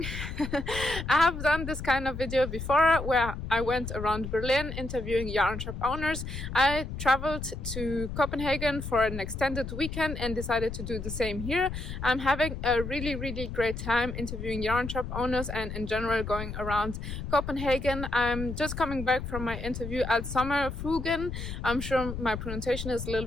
I have done this kind of video before where I went around Berlin interviewing yarn shop owners. I traveled to Copenhagen for an extended weekend and decided to do the same here. I'm having a really great time interviewing yarn shop owners and in general going around Copenhagen. I'm just coming back from my interview at Sommerfuglen. I'm sure my pronunciation is a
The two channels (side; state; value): left; noise; rumble, 7 dB below the sound